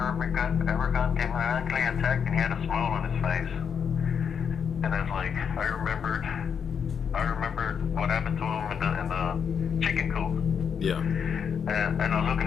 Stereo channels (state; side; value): quieter; right; 7.1 dB